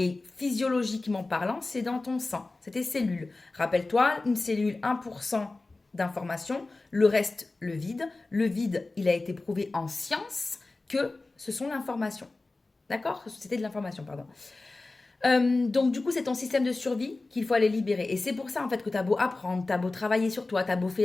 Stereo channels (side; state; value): right; quieter; 3.3 dB